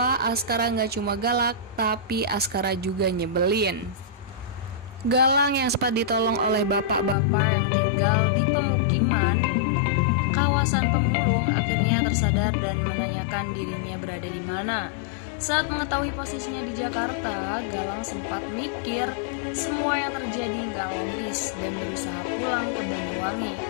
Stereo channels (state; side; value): drops out; right; at 7.2 s